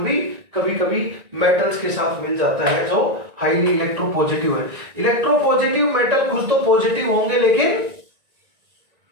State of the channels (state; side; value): late; left; 1.9 ms